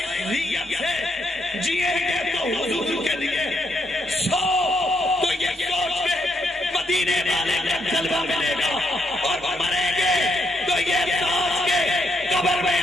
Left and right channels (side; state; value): both; normal; correlation 0.77